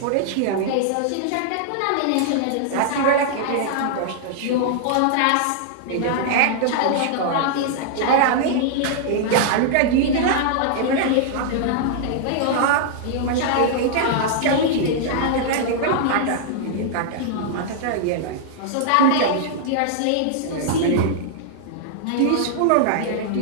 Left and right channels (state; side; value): different; both; correlation -0.01